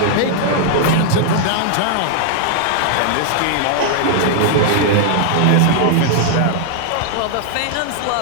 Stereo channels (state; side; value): different; both; correlation 0.00